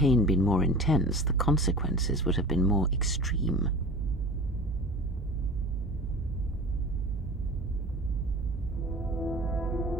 been more intense, the consequences would have been more extreme.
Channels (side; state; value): both; normal; correlation 0.38